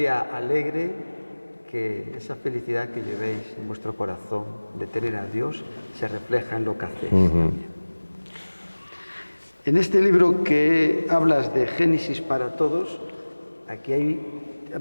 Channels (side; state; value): both; inverted; correlation -1.00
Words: alegre, que esa felicidad que llevéis en vuestro corazón de tener a Dios se refleja en lo que hacéis también. En este libro que hablas de Génesis para todos, aquí